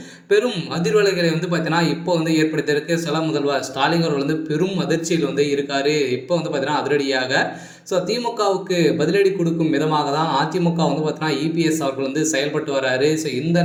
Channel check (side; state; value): both; identical; correlation 1.00